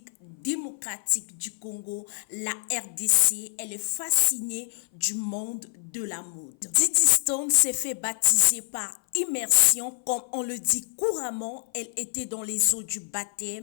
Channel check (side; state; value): right; silent; 56 dB below the other